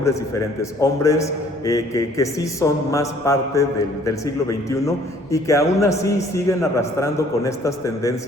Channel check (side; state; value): right; noise; rumble, 27 dB below the sound